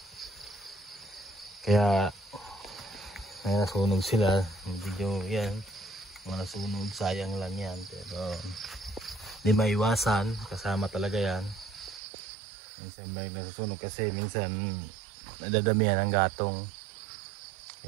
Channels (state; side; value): drops out; left; at 12.0 s